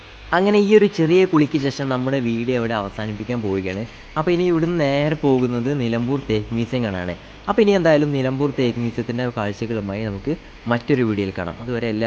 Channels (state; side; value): identical; both; correlation 1.00